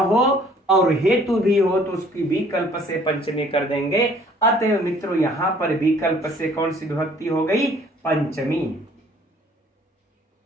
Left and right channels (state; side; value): normal; both; correlation 0.57